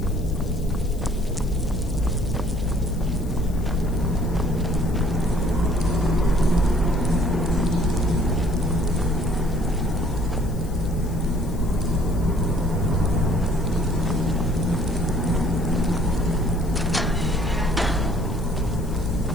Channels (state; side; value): noise; left; hiss, 22 dB below the sound